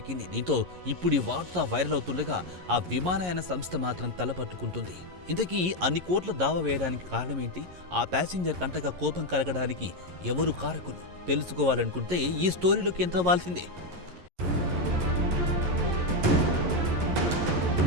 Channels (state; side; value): late; left; 11 ms